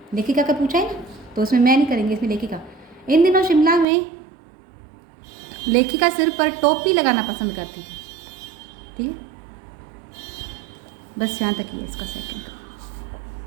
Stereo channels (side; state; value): left; drops out; at 3.9 s